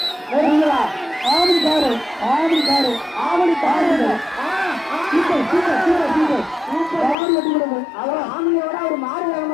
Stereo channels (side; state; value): right; drops out; at 7.2 s